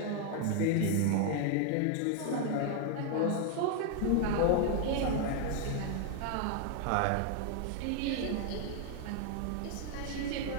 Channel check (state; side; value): different; both; correlation 0.00